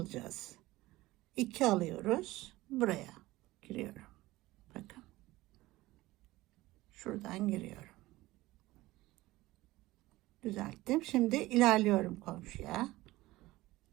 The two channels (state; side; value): quieter; left; 18.4 dB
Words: 2 alıyoruz. Buraya giriyorum. Bakın. Şuradan giriyorum. Düzelttim. Şimdi ilerliyorum komşuya.